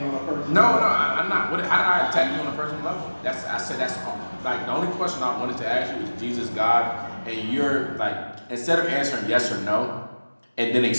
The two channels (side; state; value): both; inverted; correlation -1.00